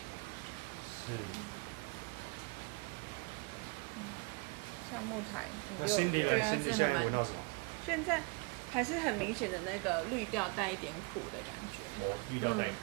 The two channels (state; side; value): quieter; left; 29.1 dB